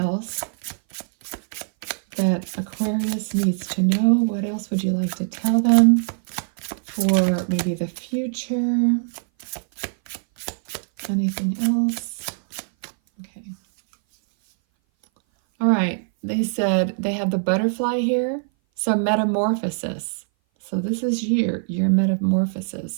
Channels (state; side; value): silent; left; 59 dB below the other